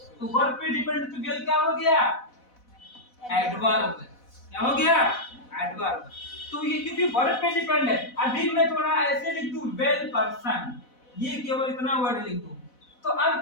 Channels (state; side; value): late; right; 4.0 ms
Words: तो वर्ब पे डिपेंड, तो वेल क्या हो गया? एडवर्ब। क्या हो गया? एडवर्ब। तो ये क्योंकि वर्ब पे डिपेंड है। अभी मैं थोड़ा ऐसे लिख दूं, वेल पर्सन, ये केवल इतना वर्ड लिख दूं, तो अब